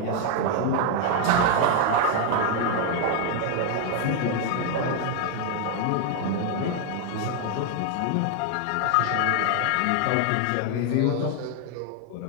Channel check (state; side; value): different; both; correlation 0.00